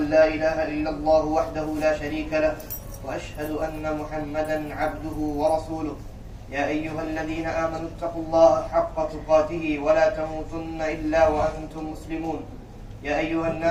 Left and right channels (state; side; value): identical; both; correlation 1.00